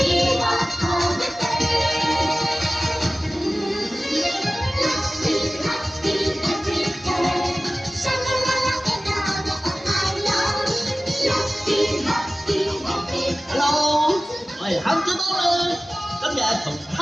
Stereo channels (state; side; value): normal; both; correlation 0.97